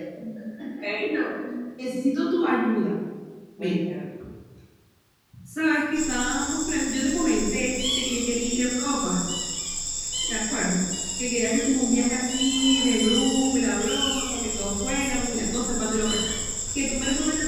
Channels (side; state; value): both; identical; correlation 1.00